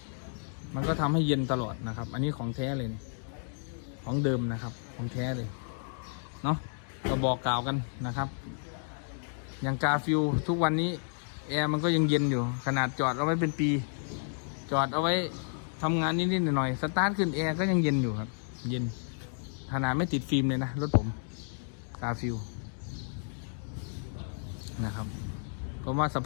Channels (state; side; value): silent; right; digital silence